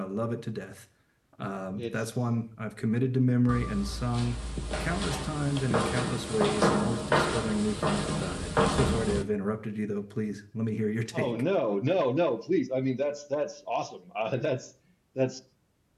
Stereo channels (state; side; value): identical; both; correlation 1.00